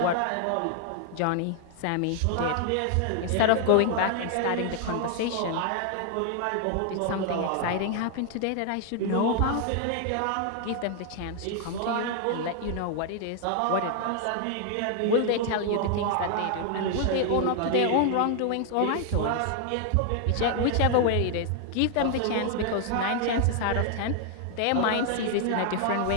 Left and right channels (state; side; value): different; both; correlation 0.00